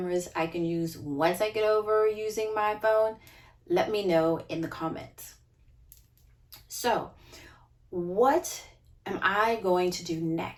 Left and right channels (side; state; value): both; identical; correlation 1.00